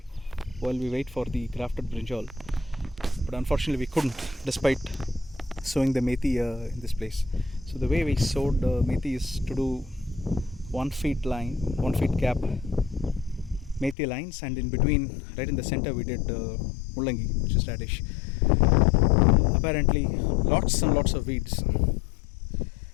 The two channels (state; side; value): drops out; right; at 14.0 s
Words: while we wait for the grafted brinjal, but unfortunately we couldn't, despite sowing the methi in this place. So the way we sowed methi is to do 1 feet line, 1 feet gap methi lines, and in between, right in the center, we did mullangi, which is radish. Apparently lots and lots of weeds,